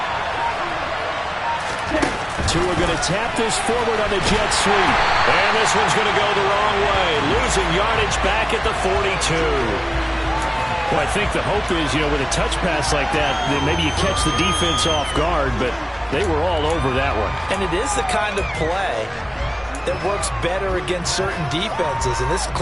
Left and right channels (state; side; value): identical; both; correlation 1.00